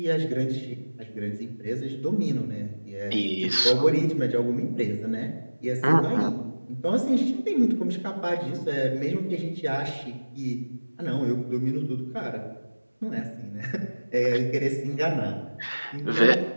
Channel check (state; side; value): inverted; both; correlation -1.00